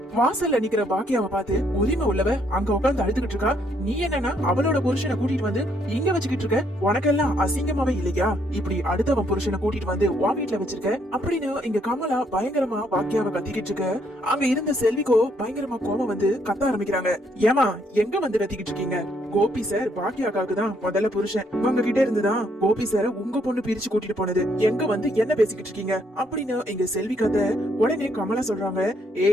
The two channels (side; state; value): both; normal; correlation 0.71